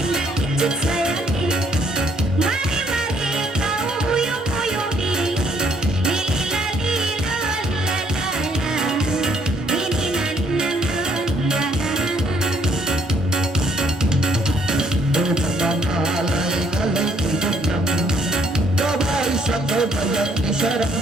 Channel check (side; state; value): both; normal; correlation 0.67